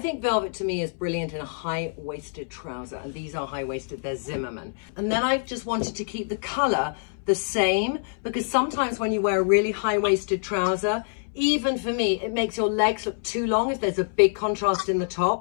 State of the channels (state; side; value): silent; right; 61 dB below the other